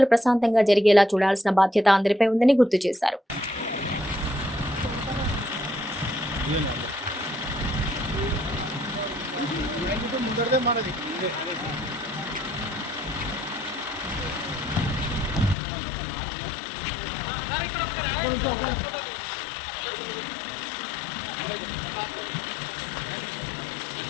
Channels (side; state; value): right; drops out; at 15.6 s